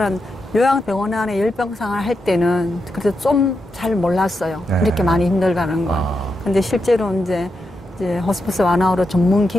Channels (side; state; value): both; normal; correlation 0.85